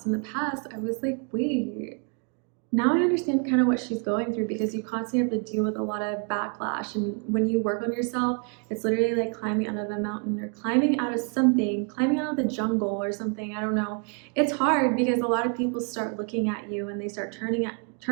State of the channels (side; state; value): left; quieter; 38.5 dB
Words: in the past, I was like, wait, now I understand kind of what she's going through, because you constantly have to deal with a lot of backlash. And when you work on yourself, it's literally like climbing out of a mountain or climbing out of something, climbing out of the jungle or something. I don't know. It's hard because a lot of people start looking at you and they start